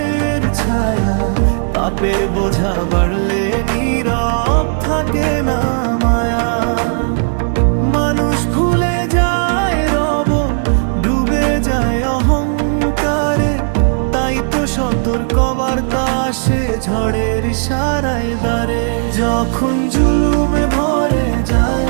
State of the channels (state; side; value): silent; left; digital silence